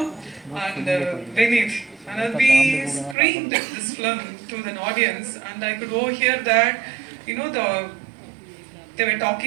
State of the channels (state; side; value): drops out; left; at 3.2 s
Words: And Vinith. And we screened this film to the audience, and I could overhear that, they were